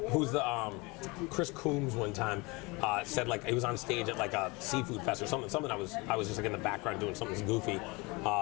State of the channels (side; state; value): right; quieter; 25.9 dB